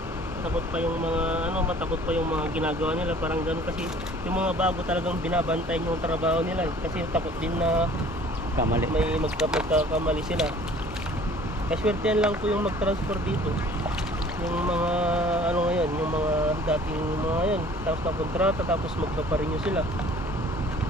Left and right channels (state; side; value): normal; both; correlation 0.51